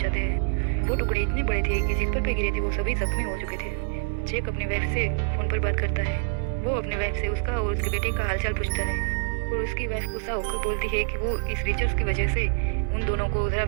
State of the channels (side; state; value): left; silent; digital silence